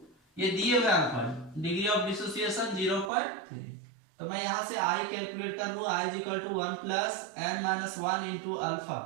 ये दिए हुए अल्फा, डिग्री ऑफ डिसोसिएशन 0.3, तो मैं यहां से आई कैलकुलेट कर लूं, i is equal to 1 plus n minus 1 into alpha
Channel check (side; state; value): left; drops out; at 3.1 s